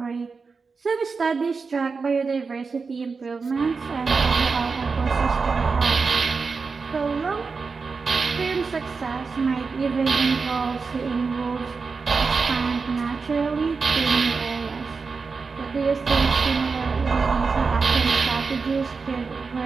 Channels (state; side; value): quieter; left; 4.7 dB